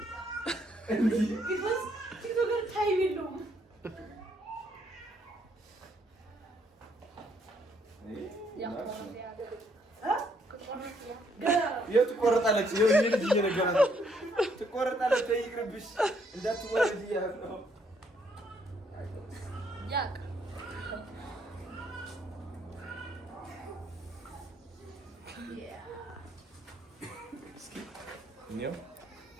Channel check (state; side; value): normal; both; correlation 0.70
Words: እንዴ ቢኮዝ ቲክቶከር ታይም የለውም። የት ትቆረጣለች? የዚህ ልጅ እየነገራት ነው። ትቆረጣለች። ይቅርብሽ እንዳትወረድ እያለ ነው። ያቅ